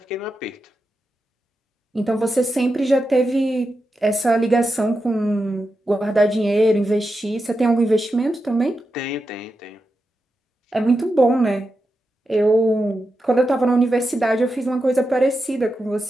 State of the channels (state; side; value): normal; both; correlation 0.89